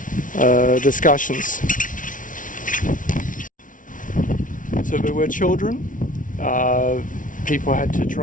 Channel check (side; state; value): right; late; 0.38 ms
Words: discussions. So there were children. People had to